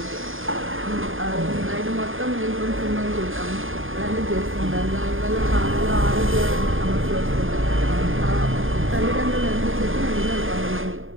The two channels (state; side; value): late; left; 0.59 ms